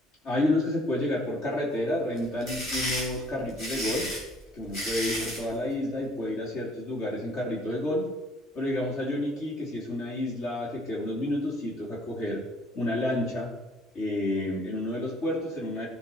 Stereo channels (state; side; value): normal; both; correlation 0.59